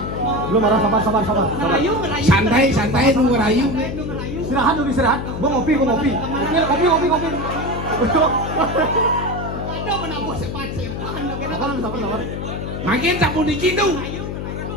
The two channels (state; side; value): noise; left; hum, 5 dB below the sound